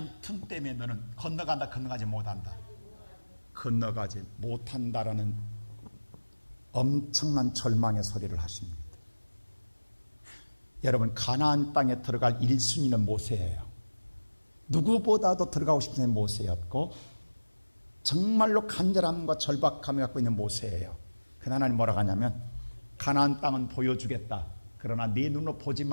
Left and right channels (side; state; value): both; inverted; correlation -1.00